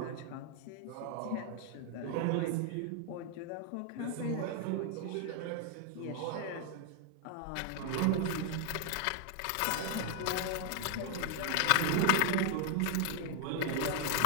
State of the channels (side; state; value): both; different; correlation 0.00